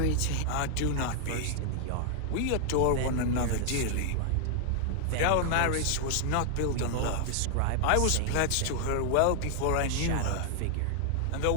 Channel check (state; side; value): different; both; correlation 0.00